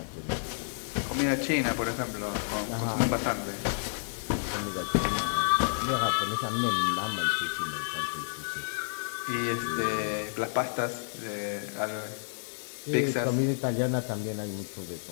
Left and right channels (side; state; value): right; silent; digital silence